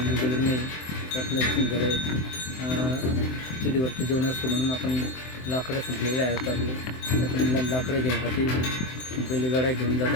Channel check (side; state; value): right; late; 23 ms